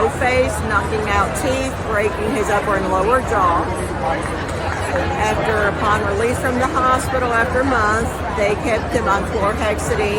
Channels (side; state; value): both; identical; correlation 1.00